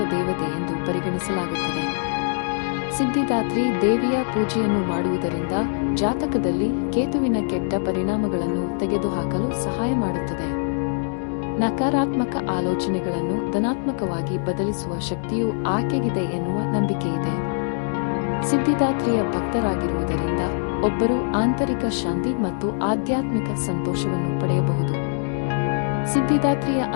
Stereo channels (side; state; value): right; silent; digital silence